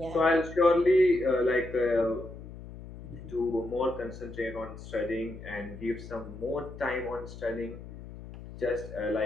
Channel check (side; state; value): left; noise; hum, 14 dB below the sound